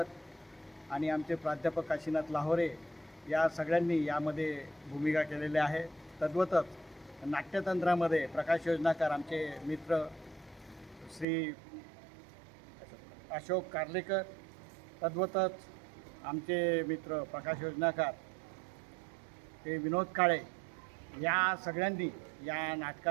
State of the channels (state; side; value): drops out; left; at 11.2 s